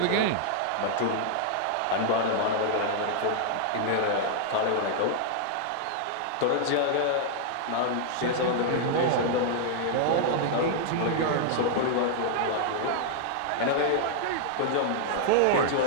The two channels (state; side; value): different; both; correlation -0.01